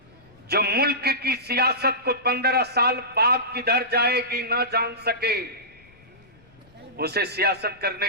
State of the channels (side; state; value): left; noise; rumble, 28 dB below the sound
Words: जो मुल्क की सियासत को 15 साल बाद किधर जाएगी ना जान सके, उसे सियासत करने